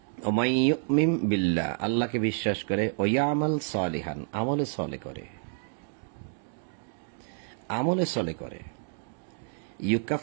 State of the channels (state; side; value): silent; left; digital silence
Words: ওমাই ইউমিন বিল্লাহ আল্লাহকে বিশ্বাস করে, ও ইয়ামাল সালিহান আমলে সলে করে, আমলে সলে করে,